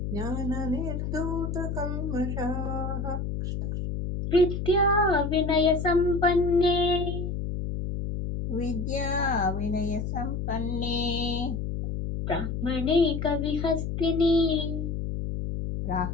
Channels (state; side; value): noise; left; hum, 3 dB below the sound